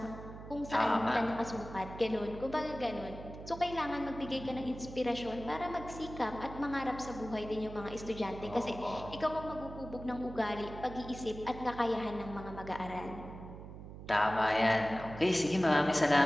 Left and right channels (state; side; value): noise; right; hum, 12 dB below the sound